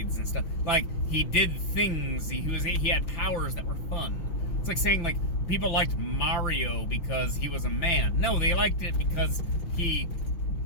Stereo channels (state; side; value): late; right; 5.9 ms